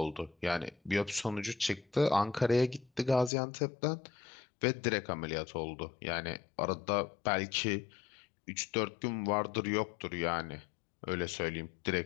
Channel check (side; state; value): right; drops out; at 3.3 s